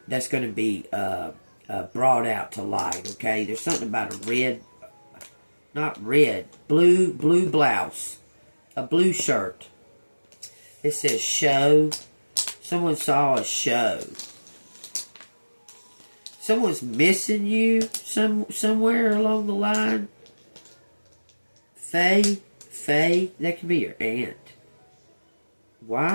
to be brought out to light, okay? There's something about a red, not red, blue blouse. A blue shirt. It says show. Someone saw a show. Someone's missing you somewhere along the line. Faye, that could be your aunt.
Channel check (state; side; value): inverted; both; correlation -1.00